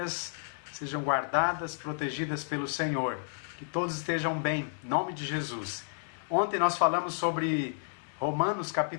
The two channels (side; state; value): right; silent; digital silence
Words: sejam guardadas, protegidas pelo Senhor. Que todos estejam bem, em nome de Jesus. Ontem nós falamos sobre Romanos